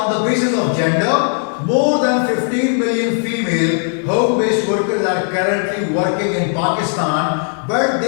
the basis of gender. More than 15 million female home-based workers are currently working in Pakistan, but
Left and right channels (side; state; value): right; silent; 56 dB below the other